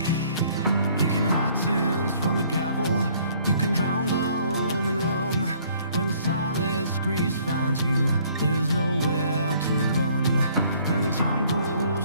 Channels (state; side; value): inverted; both; correlation -0.60